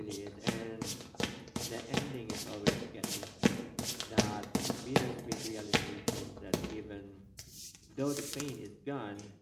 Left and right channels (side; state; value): both; identical; correlation 1.00